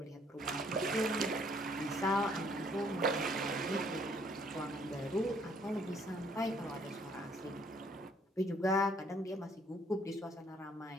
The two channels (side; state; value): both; normal; correlation 0.64